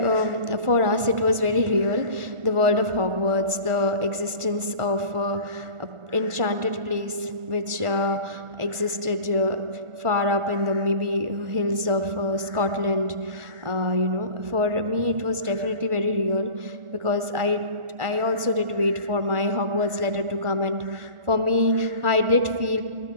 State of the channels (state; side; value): late; left; 1.4 ms